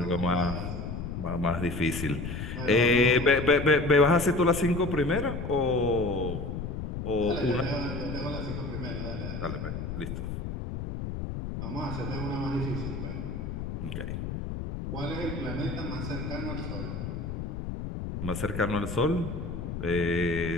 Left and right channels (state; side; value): noise; left; rumble, 5 dB below the sound